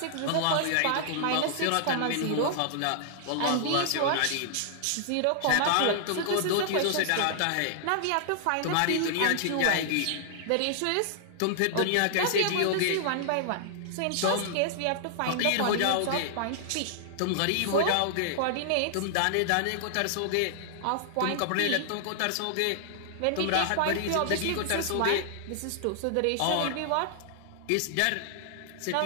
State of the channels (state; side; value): different; both; correlation -0.01